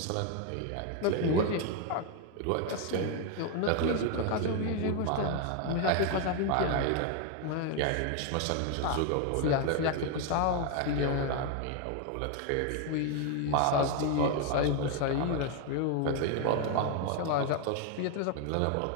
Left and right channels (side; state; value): both; different; correlation 0.01